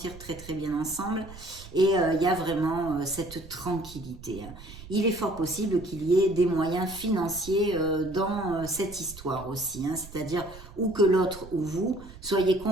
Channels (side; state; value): right; noise; rumble, 17 dB below the sound